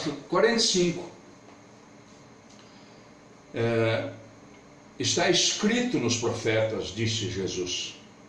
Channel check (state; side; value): identical; both; correlation 1.00